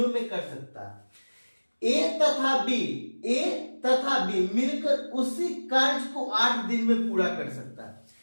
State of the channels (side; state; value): both; inverted; correlation -1.00